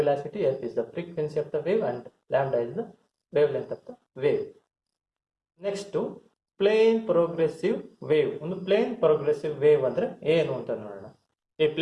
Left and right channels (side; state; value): both; identical; correlation 1.00